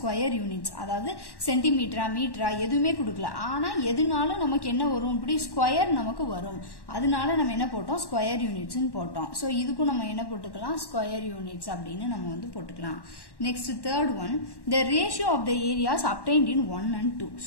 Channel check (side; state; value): right; late; 1.1 ms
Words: யூனிட்ஸ், அதாவது சென்டிமீட்டரா மீட்டரா எதுவுமே கொடுக்கல. ஆனால் எதுனாலும் நமக்கு என்ன வரும்? இப்படி ஸ்கொயர் நமக்கு வரும். அதனால நம்ம என்ன போட்டோம்? ஸ்கொயர் யூனிட்ஸ்ன்னு போட்டோம். ஸோ இதுக்கும் நம்ம என்ன போட்டுக்கலாம்? ஸ்கொயர் யூனிட்ஸ் அப்படின்னு நம்ம வந்து போட்டுக்கலாம். Next third one, the ratio of the areas obtained in 1 and 2.